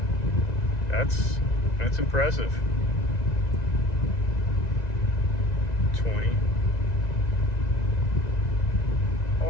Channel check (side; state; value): right; late; 1.9 ms